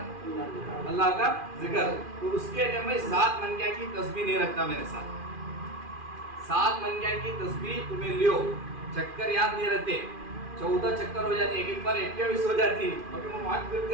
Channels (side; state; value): left; late; 2.4 ms